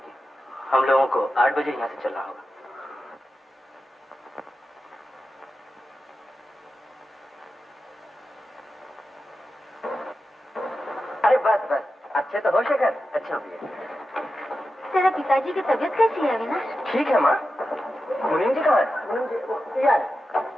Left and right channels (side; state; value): both; normal; correlation 0.91